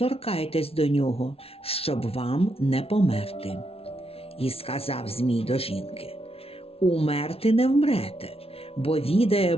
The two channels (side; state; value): right; late; 0.28 ms